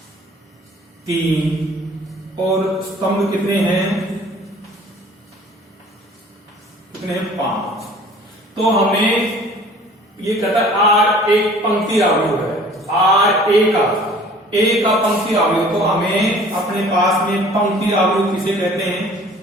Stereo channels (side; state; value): both; normal; correlation 0.50